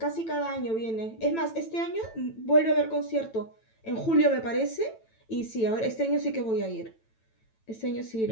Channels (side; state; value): right; late; 9.0 ms